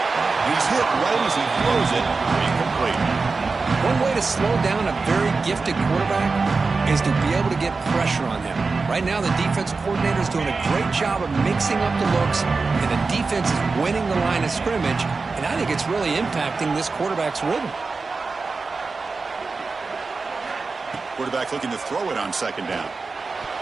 He's hit right as he throws it. Incomplete. One way to slow down a very gifted quarterback is to be able to get pressure on him. Right now, the defensive coordinator is doing a great job of mixing up the looks, and the defense is winning the line of scrimmage, and I think it's really impacting this quarterback's rhythm. Quarterback looking to throw it on second down.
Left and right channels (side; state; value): left; quieter; 4.2 dB